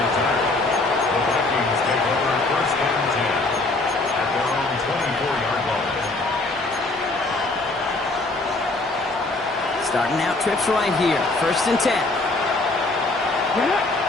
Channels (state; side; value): quieter; right; 3.1 dB